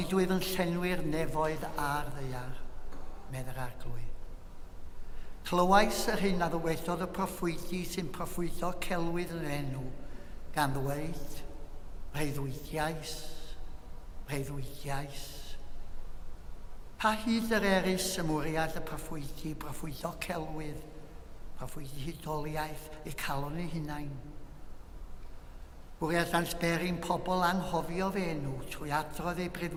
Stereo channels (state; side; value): identical; both; correlation 1.00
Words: dwyf yn llenwi'r nefoedd a'r ddeiar, medd yr arglwydd. Clywais yr hyn a ddywedodd y proffwydi sy'n proffwydo celwydd yn enw, gan ddweud, breuddwydiais, breuddwydiais. Pa hyd yr erys y mwriad y proffwydi, proffwydo celwydd, proffwydi hydoliaeth, eu calon eu hunain. Bwriad ansberin pobl anghofio fe enw trwy adrodd eu